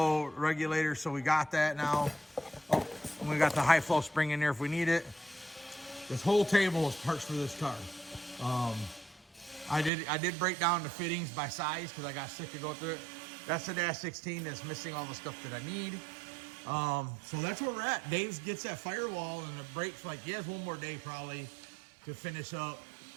regulator, so we got that now. Oh, and we got the high flow spring in there if we need it. This whole table is parts for this car. I did break down the fittings by size because I got sick of going through it. That's the Dash 16 that's missing all the stuff that I need. So that's where we're at. Dave gets that Firewall and the brakes, like he has one more day probably to finish up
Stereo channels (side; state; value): left; drops out; at 9.9 s